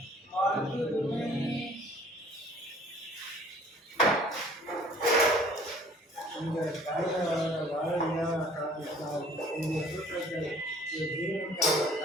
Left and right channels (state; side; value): normal; both; correlation 0.54